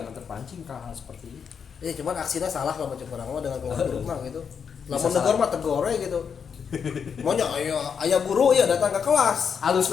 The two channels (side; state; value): right; quieter; 6.8 dB